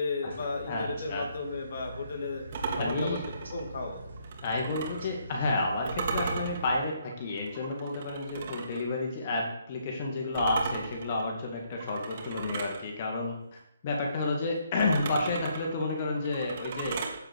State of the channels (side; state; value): both; inverted; correlation -0.69